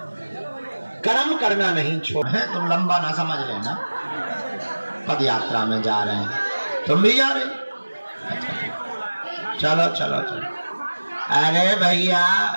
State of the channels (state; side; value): inverted; both; correlation -1.00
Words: कर्म करना नहीं छोड़ है। तुम लंबा ना समझ लेना, पद यात्रा में जा रहे हैं, तुम भी जा रहे चलो चलो चलो। अरे भैया